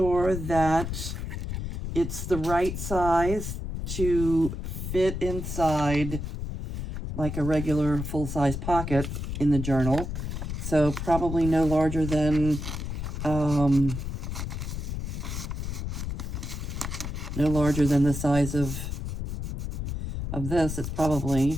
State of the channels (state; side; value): noise; left; rumble, 5 dB below the sound